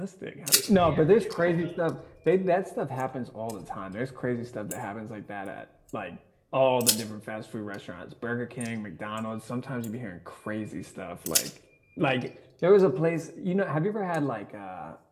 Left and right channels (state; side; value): identical; both; correlation 1.00